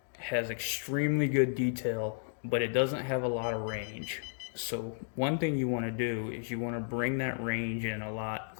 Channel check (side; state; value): right; silent; digital silence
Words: has extremely good detail, but it doesn't have a lot of range. So one thing you want to do is you want to bring that range in a lot